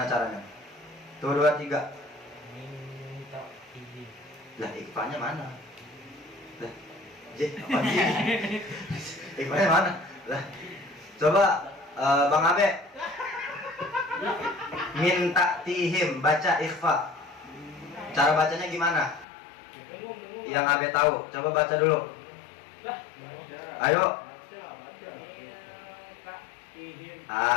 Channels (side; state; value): right; drops out; at 19.2 s